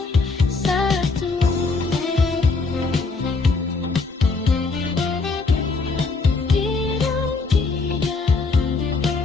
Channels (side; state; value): right; quieter; 4.0 dB